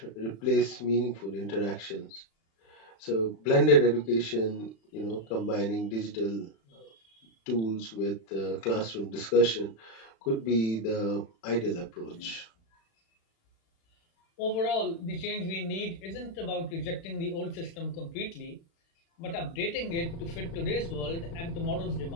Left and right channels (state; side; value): late; right; 36 ms